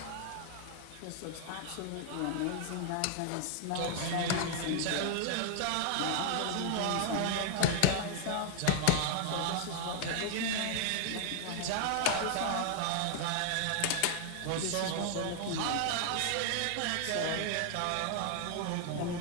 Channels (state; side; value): different; both; correlation 0.00